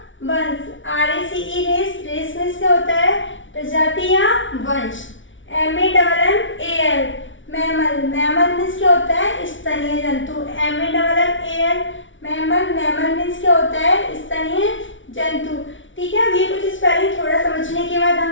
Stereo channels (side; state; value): right; late; 0.56 ms